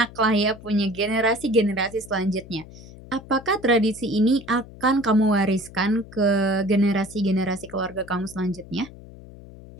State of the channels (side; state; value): left; noise; hum, 18 dB below the sound